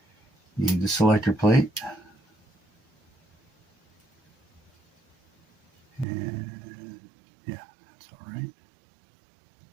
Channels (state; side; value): drops out; left; at 6.1 s